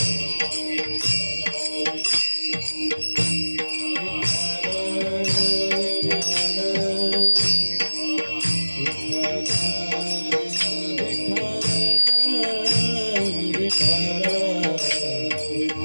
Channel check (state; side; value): inverted; both; correlation -1.00